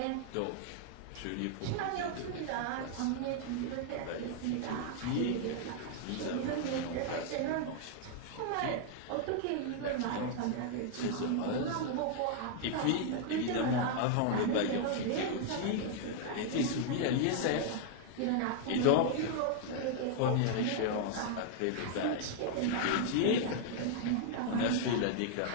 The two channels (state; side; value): different; both; correlation -0.01